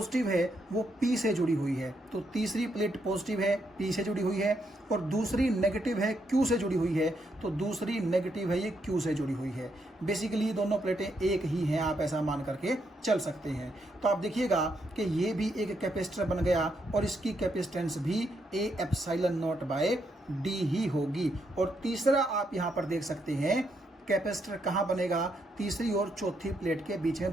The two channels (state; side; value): normal; both; correlation 0.78